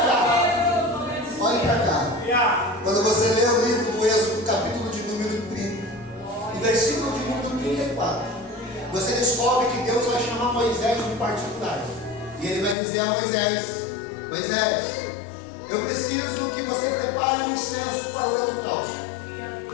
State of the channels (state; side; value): drops out; right; at 12.8 s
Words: cá. Olhe para cá. Quando você lê o livro do Êxodo, capítulo de número 30, e versículo de número 34, você descobre que Deus vai chamar Moisés de particular. E ele vai dizer a Moisés: Moisés, eu preciso que você prepare um incenso para o holocausto.